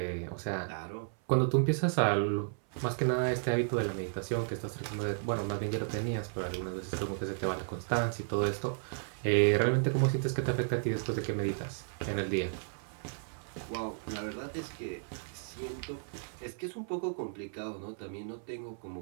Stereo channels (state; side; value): silent; left; 55 dB below the other